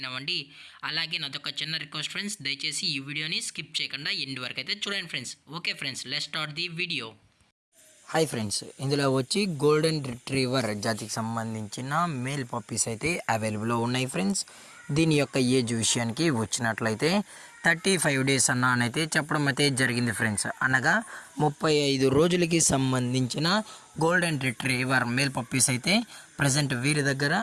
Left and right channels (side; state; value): both; identical; correlation 1.00